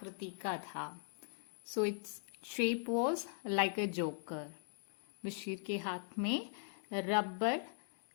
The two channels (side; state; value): right; silent; digital silence